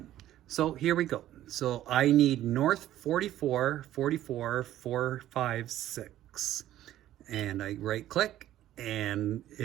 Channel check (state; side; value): quieter; left; 13.1 dB